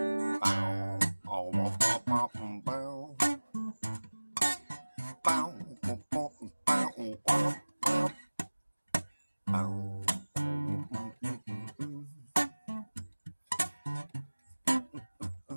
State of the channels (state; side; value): inverted; both; correlation -1.00